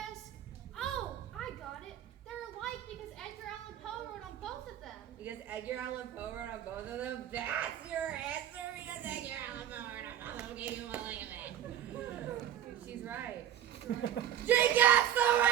Oh, I got it. They're alike because Edgar Allan Poe wrote on both of them. Because Edgar Allan Poe wrote on both of them? That's your answer because Edgar Allan Poe wrote on both of them. Gave you a look at that. She's right. She gets the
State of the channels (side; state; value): left; quieter; 10.7 dB